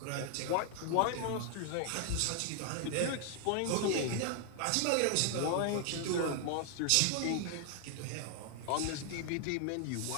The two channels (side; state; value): both; different; correlation 0.00